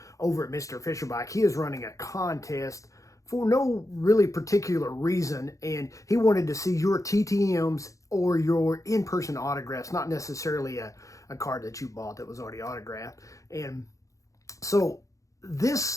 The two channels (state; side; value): late; right; 0.16 ms